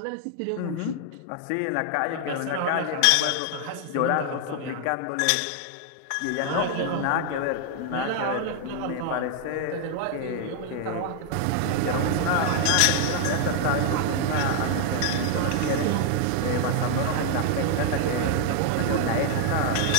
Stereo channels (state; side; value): different; both; correlation 0.00